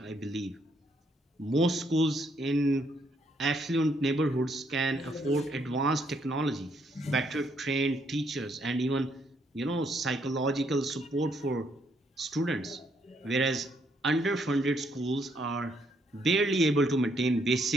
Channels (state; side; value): normal; both; correlation 0.72